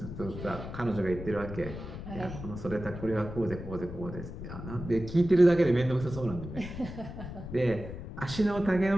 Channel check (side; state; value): left; noise; rumble, 10 dB below the sound